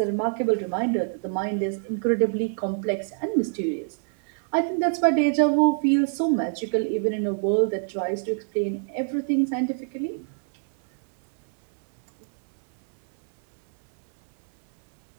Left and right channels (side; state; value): left; silent; 62 dB below the other